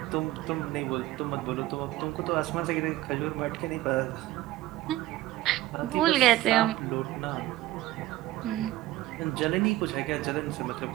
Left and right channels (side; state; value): left; quieter; 16.3 dB